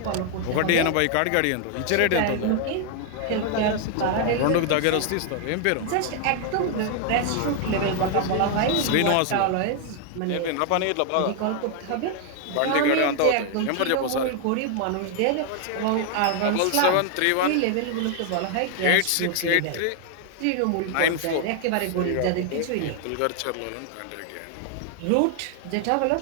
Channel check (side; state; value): both; different; correlation 0.00